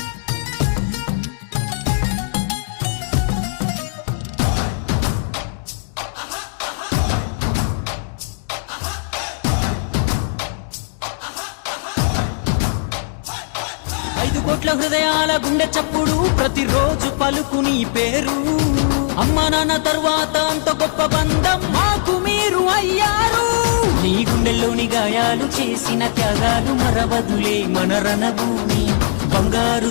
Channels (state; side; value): silent; right; digital silence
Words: 5 కోట్ల హృదయాల గుండె చప్పుడు ప్రతిరోజు పలుకు నీ పేరు అమ్మ నాన్న తర్వాత అంత గొప్ప బంధం మాకు మీరు అయ్యారు నీ గుండెల్లోని గాయాలు చేసిన త్యాగాలు మరవదులే మన రణభూమి బంగారు